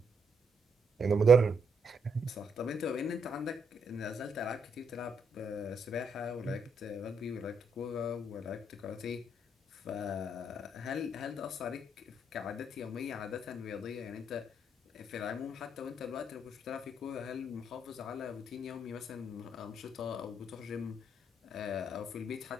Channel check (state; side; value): normal; both; correlation 0.75